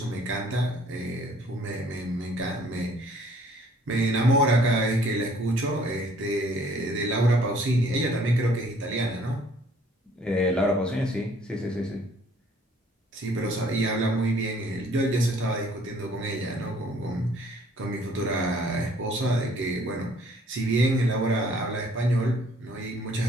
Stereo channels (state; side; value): normal; both; correlation 0.59